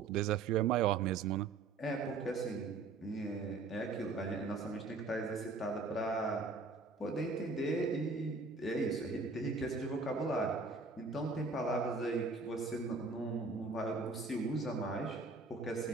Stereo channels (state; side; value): quieter; left; 4.0 dB